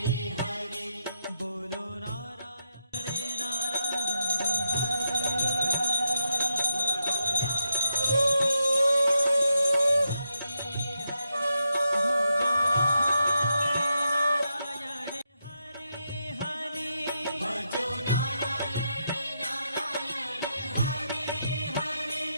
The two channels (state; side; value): inverted; both; correlation -0.82